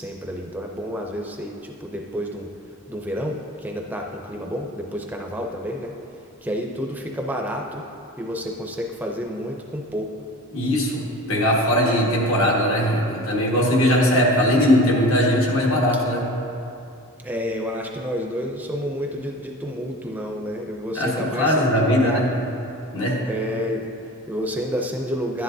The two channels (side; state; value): both; normal; correlation 0.38